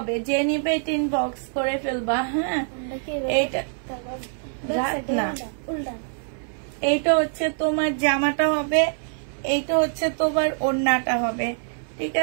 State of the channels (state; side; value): silent; left; digital silence